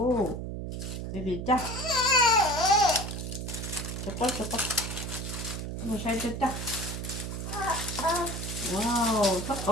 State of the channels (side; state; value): right; noise; hum, 5 dB below the sound